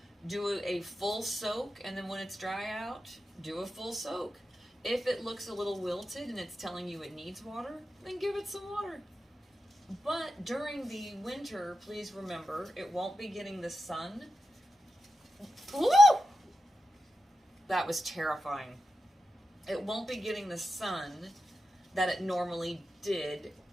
Do a full soak, and then when it's dry out, do a full soak. If it looks a little wilted and it's telling you it needs water, then give it some water. But during the winter, please remember, it won't be getting the sun. Woo! That was terrifying. It won't be getting the sun that it normally did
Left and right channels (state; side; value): normal; both; correlation 0.90